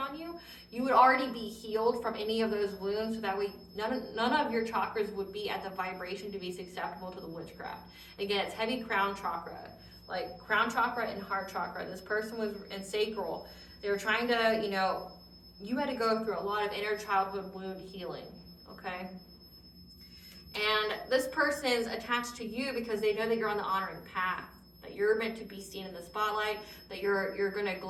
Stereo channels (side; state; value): both; identical; correlation 1.00